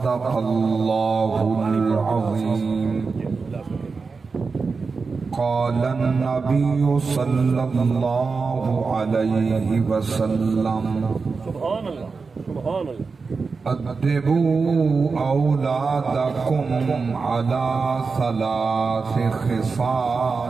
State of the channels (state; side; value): quieter; left; 4.6 dB